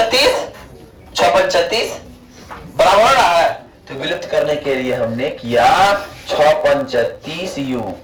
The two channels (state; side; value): identical; both; correlation 1.00